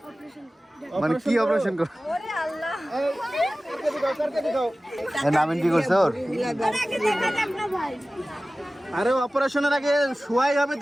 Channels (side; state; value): both; normal; correlation 0.97